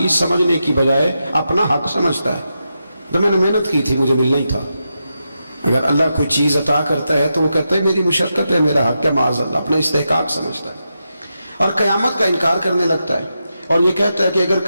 سمجھنے کی بجائے اپنا حق سمجھتا ہے۔ تو میں نے محنت کی تھی، مجھے ملنا ہی تھا۔ اگر اللہ کوئی چیز عطا کرتا ہے تو وہ کہتا ہے میری مشقت ہے، میرا حق ہے، معاذ اللہ، اپنا استحقاق سمجھتا ہے اور قیامت کا انکار کرنے لگتا ہے، اور یہ کہتا ہے کہ اگر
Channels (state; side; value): inverted; both; correlation -0.87